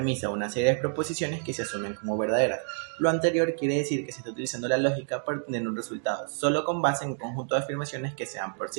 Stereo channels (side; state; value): left; silent; 56 dB below the other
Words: o una serie de proposiciones que se asumen como verdaderas. Lo anterior quiere decir que se está utilizando la lógica para obtener un resultado, solo con base en un conjunto de afirmaciones que sean por